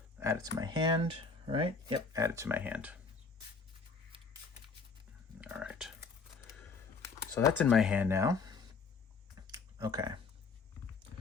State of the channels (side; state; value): right; quieter; 4.6 dB